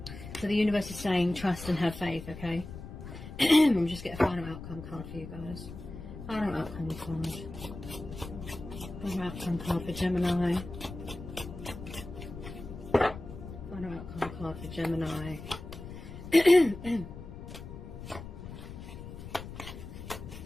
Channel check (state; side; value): noise; left; rumble, 11 dB below the sound